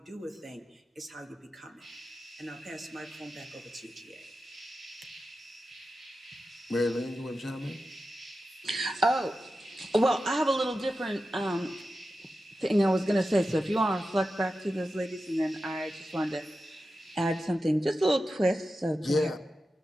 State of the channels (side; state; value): both; normal; correlation 0.92